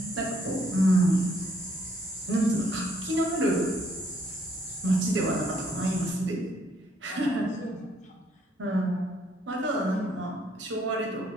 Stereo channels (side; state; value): both; normal; correlation 0.68